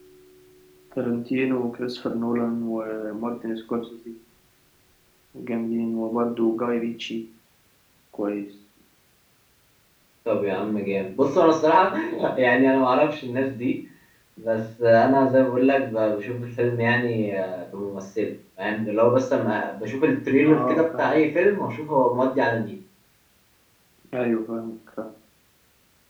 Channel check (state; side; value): identical; both; correlation 1.00